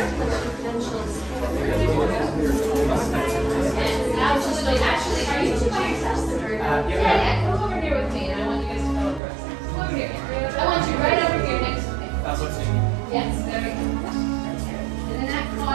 Actually, are you two by yourselves? Yeah, come over here with me, and I want you guys to come over. Come over here. I want you right over here next to me. That's what's in. Yes, there we go. And in that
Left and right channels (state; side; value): drops out; left; at 9.2 s